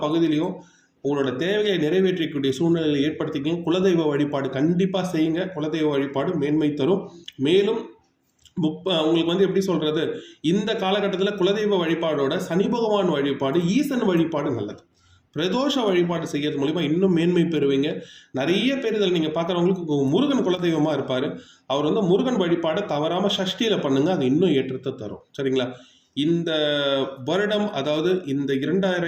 பகுதியிலையும் உங்களோட தேவையை நிறைவேற்றக்கூடிய சூழ்நிலையை ஏற்படுத்திக்கங்க. குலதெய்வ வழிபாடு கண்டிப்பாக செய்யுங்க. குலதெய்வ வழிபாடு மேன்மை தரும். மேலும் உங்களுக்கு எப்படி சொல்றது, இந்த காலகட்டத்தில் குலதெய்வ வழிபாடோட சனி பகவான் வழிபாடு, ஈசன் வழிபாடு நல்லது. பிரதோஷ வழிபாடு செய்யறது மூலிமா இன்னும் மேன்மை பெறுவீங்க. நிறைய பேர் இதில் நீங்கள் பார்க்குறவங்களுக்கு முருகன் குலதெய்வமாக இருப்பார். அவர் முருகன் வழிபாடை தவறாமல் சஷ்டியில் பண்ணுங்க, அது இன்னும் ஏற்றத்தை தரும். சரிங்களா, இந்த வருடம், அதாவது இந்த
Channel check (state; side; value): identical; both; correlation 1.00